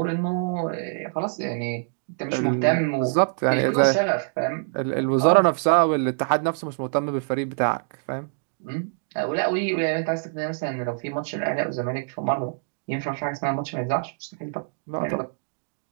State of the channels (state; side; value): silent; left; digital silence